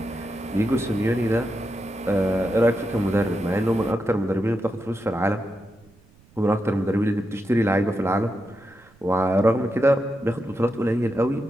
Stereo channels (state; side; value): noise; right; rumble, 29 dB below the sound